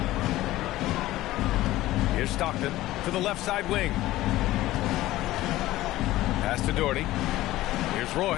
Here's Stockton to the left side wing. Pass to Doherty. Here's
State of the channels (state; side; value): quieter; right; 16.3 dB